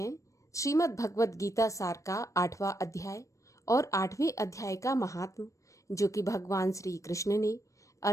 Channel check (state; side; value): late; right; 0.15 ms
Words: श्रीमद् भगवत गीता सार का 8वां अध्याय और 8वें अध्याय का महात्म, जो कि भगवान श्री कृष्ण ने